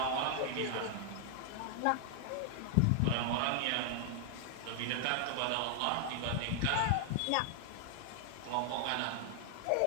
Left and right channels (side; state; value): both; different; correlation 0.00